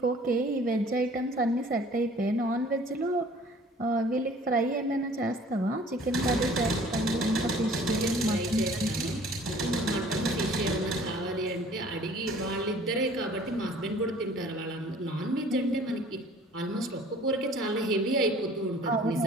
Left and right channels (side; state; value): both; normal; correlation 0.51